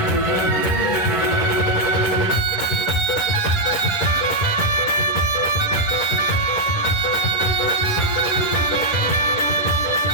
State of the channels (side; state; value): right; late; 11 ms